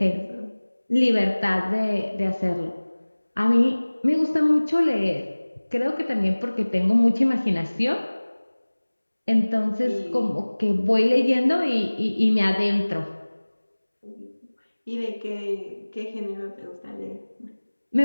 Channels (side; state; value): both; inverted; correlation -1.00